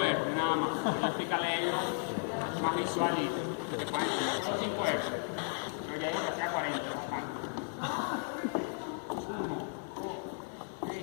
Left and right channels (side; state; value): right; silent; 55 dB below the other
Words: R, nada más. Voy a explicarle a ellos más visual y que pueden entender. Solo 5 R. Pero ya digo que hacía 40. 1, 2,